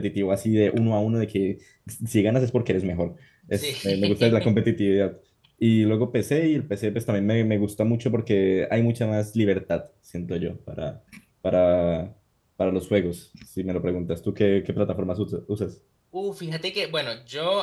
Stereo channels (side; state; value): both; identical; correlation 1.00